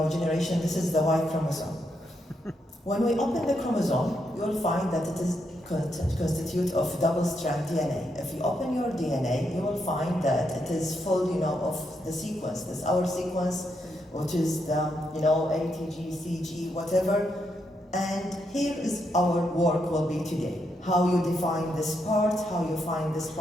generation. This is the Y chromosome. When we open the chromosome, you'll find that it is constituted of double-strand DNA. If you open your DNA, you will find that it is full, of the sequence. This is our sequence, which is the, A, T, G, C, G, whatever. And here is our work will be today. How you define this part, how you find this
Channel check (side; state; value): both; normal; correlation 0.80